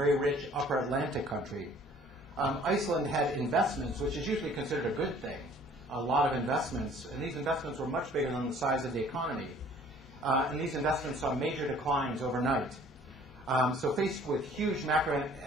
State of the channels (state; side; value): normal; both; correlation 0.54